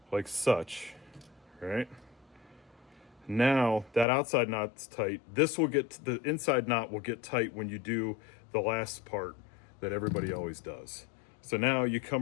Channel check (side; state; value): right; drops out; at 4.0 s